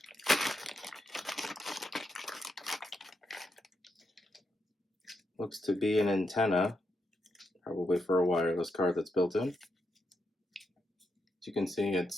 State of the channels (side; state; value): both; normal; correlation 0.83